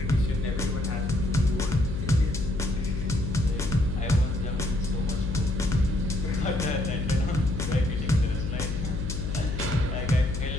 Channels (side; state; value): left; noise; hum, 3 dB below the sound